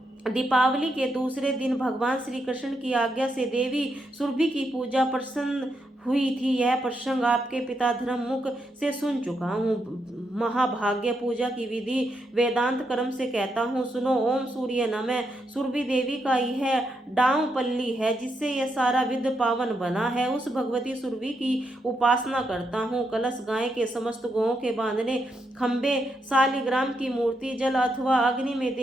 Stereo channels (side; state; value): both; normal; correlation 0.81